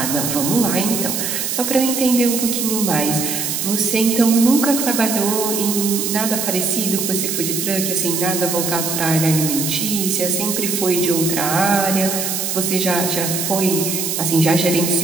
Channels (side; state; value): right; noise; hiss, 2 dB below the sound